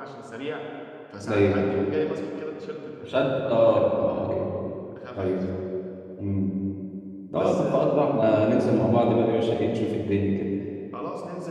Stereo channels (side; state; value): both; identical; correlation 1.00